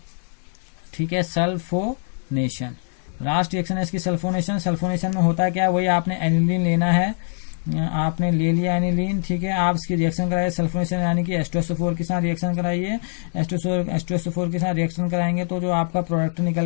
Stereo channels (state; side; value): silent; right; digital silence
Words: ठीक है, सल्फोनेशन लास्ट रिएक्शन है इसकी सल्फोनेशन। सल्फोनेशन में होता है क्या, वही आपने एनिलीन लेना है, आपने ले लिया एनिलीन, ठीक है, आप इसकी रिएक्शन कराइए सल्फोनेशन यानी कि H2SO4 के साथ रिएक्शन कराइए। H2SO4 के साथ रिएक्शन कराएंगे तो जो आपका प्रोडक्ट